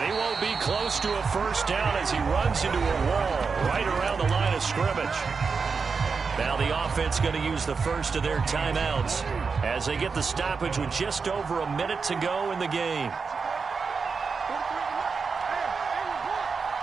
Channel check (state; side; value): quieter; left; 5.1 dB